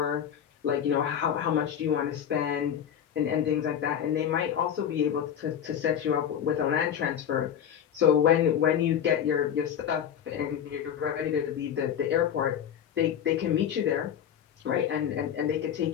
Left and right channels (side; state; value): right; quieter; 9.1 dB